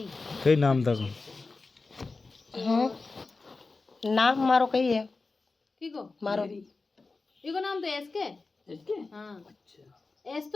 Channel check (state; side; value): quieter; right; 3.8 dB